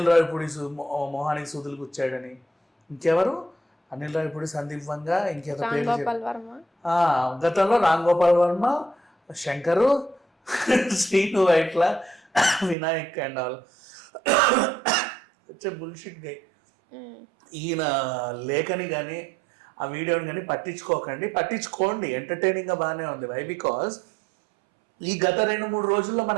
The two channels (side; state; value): left; drops out; at 12.8 s